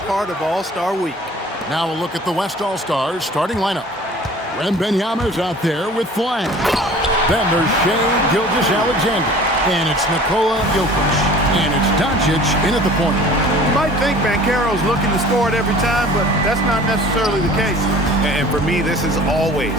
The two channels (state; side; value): normal; both; correlation 0.46